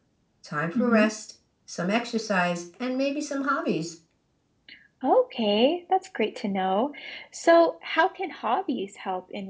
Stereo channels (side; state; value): both; identical; correlation 1.00